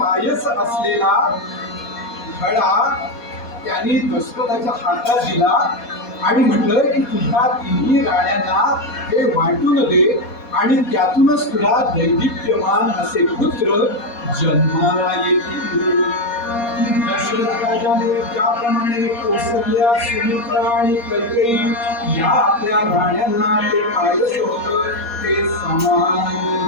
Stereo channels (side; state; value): right; late; 4.2 ms